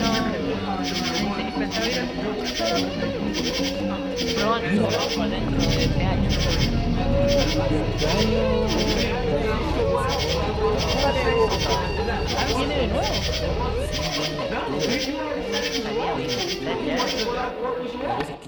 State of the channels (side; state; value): both; identical; correlation 1.00